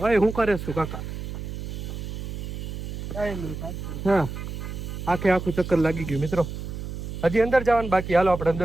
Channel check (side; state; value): right; noise; hum, 7 dB below the sound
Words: હવે હું કરે છું કાકા હા આખે આખું ચક્કર લાગી ગયું મિત્રો હજી અંદર જવાનું બાકી હાલો આપણે